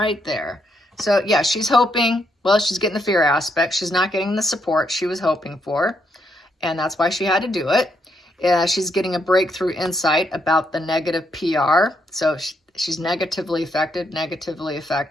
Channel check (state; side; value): normal; both; correlation 0.77